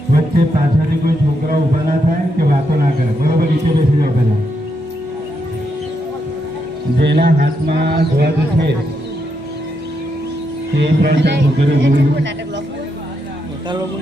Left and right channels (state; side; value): normal; both; correlation 0.81